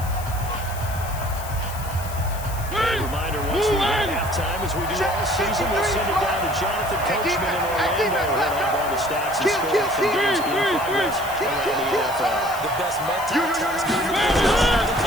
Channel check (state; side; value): noise; left; hiss, 14 dB below the sound